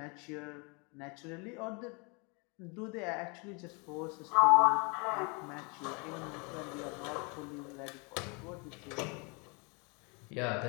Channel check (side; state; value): right; quieter; 31.7 dB